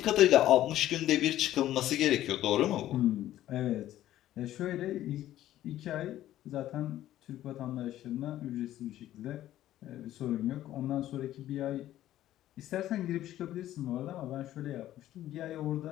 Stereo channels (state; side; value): quieter; right; 13.4 dB